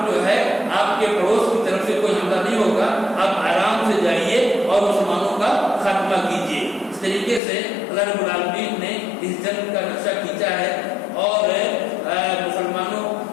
جو ہے آپ کے پڑوس کی طرف سے کوئی حملہ نہیں ہوگا، آپ آرام سے جائیے اور مسلمانوں کا خاتمہ کیجیے. اس طریقے سے اللہ رب العالمین نے اس جنگ کا نقشہ کھینچا ہے اور مسلمانوں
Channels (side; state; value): right; drops out; at 7.4 s